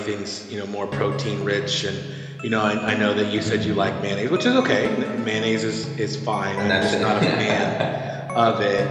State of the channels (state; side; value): identical; both; correlation 1.00